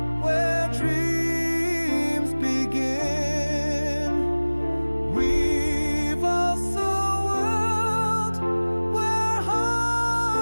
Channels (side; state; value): both; inverted; correlation -1.00